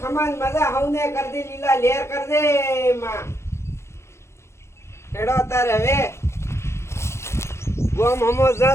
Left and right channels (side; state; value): right; late; 0.13 ms